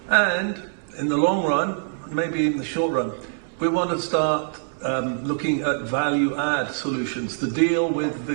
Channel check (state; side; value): silent; left; 63 dB below the other